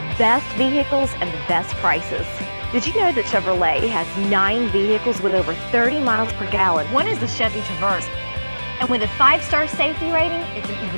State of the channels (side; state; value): both; inverted; correlation -1.00